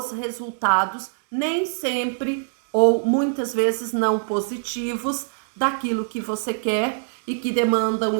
resultados, nem sempre ou muitas vezes não positivos, daquilo que você quer e que demanda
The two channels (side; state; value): left; silent; digital silence